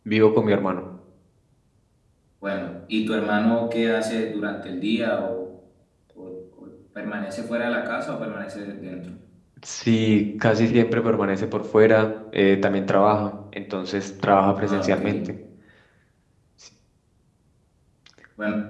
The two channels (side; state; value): both; identical; correlation 1.00